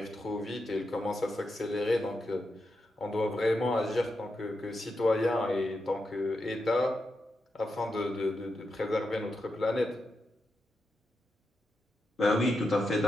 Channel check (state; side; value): normal; both; correlation 0.87